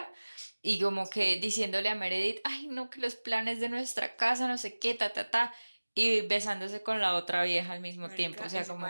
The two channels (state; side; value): inverted; both; correlation -1.00